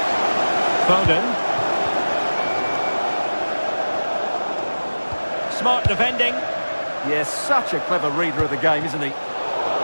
Foden. Smart defending. Yes, such a clever reader of the game, isn't he?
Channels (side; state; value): both; inverted; correlation -1.00